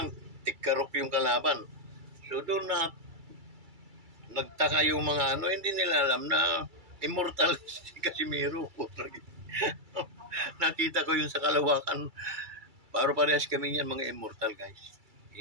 tikkarok yung kalaban. So, doon na nagtaka yung mga hindi nila alam na immortal si Casimiro. Nakita ko yun sa kalawakan. Parehas kami yan, mga immortal, guys.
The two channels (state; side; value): late; left; 2.3 ms